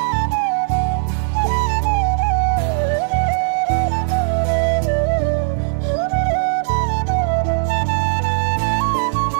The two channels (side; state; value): left; silent; digital silence